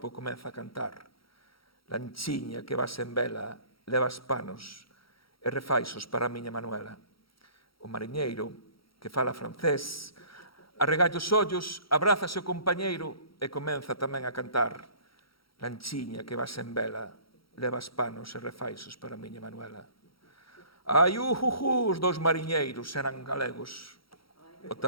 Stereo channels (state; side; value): late; right; 0.75 ms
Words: comeza a cantar. Lanchiña que vas en vela, levas panos e refaixos para a miña Manuela. O mariñeiro que fala francés arregalla os ollos, abraza o compañeiro e comeza tamén a cantar. Lanchiña que vas en vela, levas panos e refaixos para a miña Manuela. Ai, os dous mariñeiros eran galegos. O